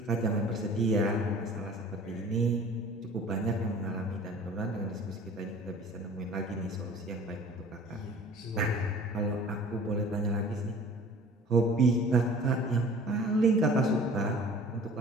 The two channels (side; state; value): both; normal; correlation 0.46